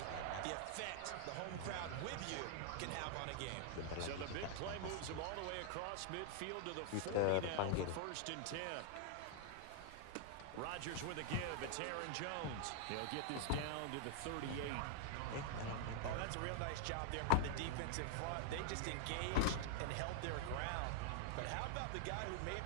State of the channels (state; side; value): different; both; correlation -0.01